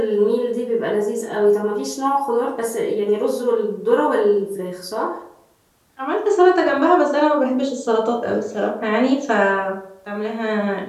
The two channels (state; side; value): identical; both; correlation 1.00